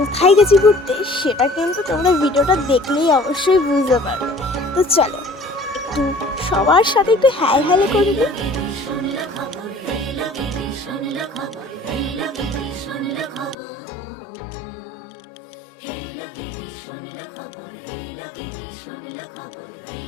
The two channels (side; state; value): right; drops out; at 13.6 s